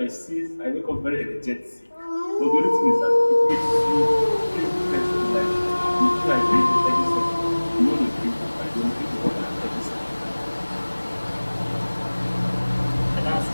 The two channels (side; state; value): both; inverted; correlation -1.00